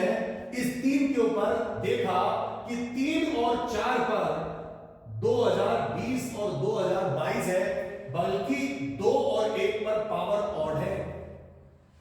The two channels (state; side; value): identical; both; correlation 1.00